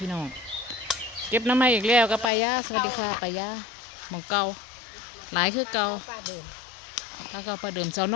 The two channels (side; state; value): right; drops out; at 2.3 s